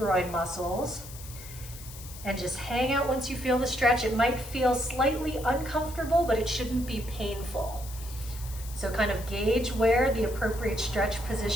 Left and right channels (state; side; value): noise; left; hiss, 15 dB below the sound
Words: muscles. And just hang out once you feel the stretch. It might feel slightly uncomfortable, but it shouldn't be painful. So kind of gauge where the appropriate stretch